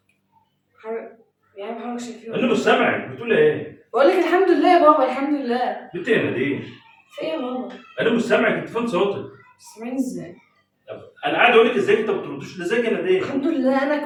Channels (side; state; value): both; identical; correlation 1.00